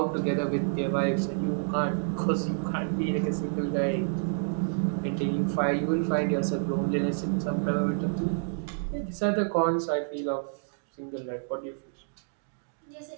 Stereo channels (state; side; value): silent; left; digital silence